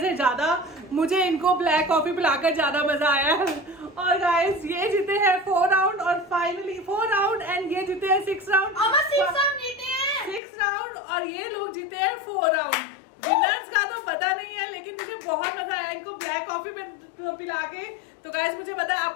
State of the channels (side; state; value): right; drops out; at 10.4 s